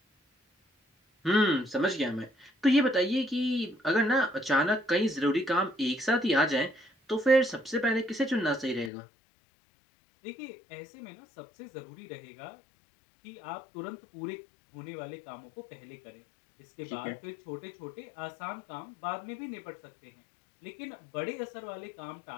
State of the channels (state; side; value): drops out; right; at 8.9 s